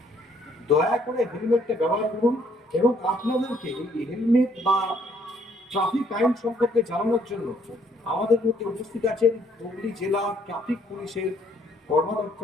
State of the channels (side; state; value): both; normal; correlation 0.66